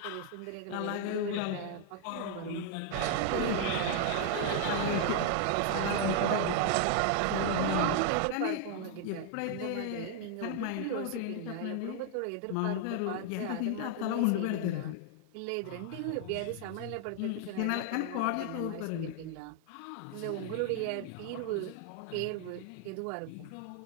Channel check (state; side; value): different; both; correlation 0.00